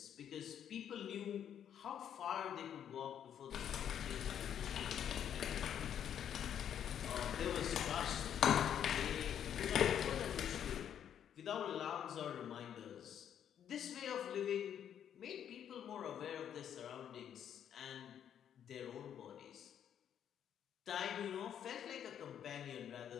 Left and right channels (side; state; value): right; quieter; 9.3 dB